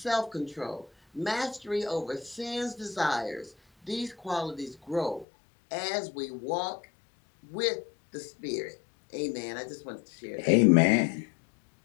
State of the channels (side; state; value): right; drops out; at 5.2 s